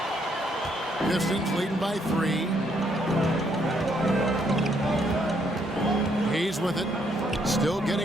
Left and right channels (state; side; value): normal; both; correlation 0.72